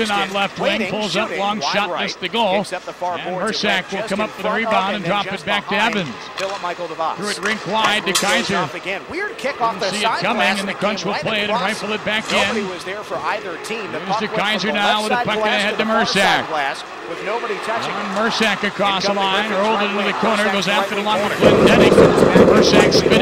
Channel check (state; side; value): identical; both; correlation 1.00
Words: on left wing. Pulls up, long shot, missed the goal. And Mersak will come up for the rebound and drop it back to Evans. Threw it rink wide to Kaiser. Didn't see it coming, and the Crunch will play it and rifle it back in. Here's to Kaiser now with a puck ahead to Mersak. Mersak across the line, rolled it into the corner, goes after the line with Glendenning. Mersak